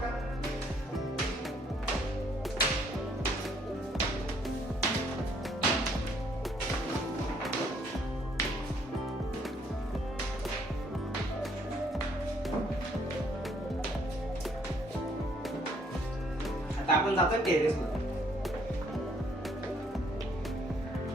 आता आपण जातो टेरेस वर.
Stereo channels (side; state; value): both; normal; correlation 0.65